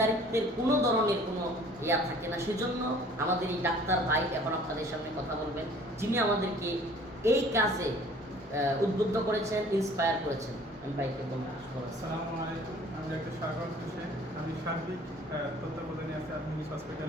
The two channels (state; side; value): normal; both; correlation 0.52